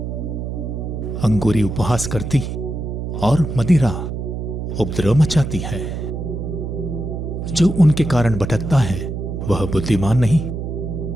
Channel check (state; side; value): noise; right; hum, 5 dB below the sound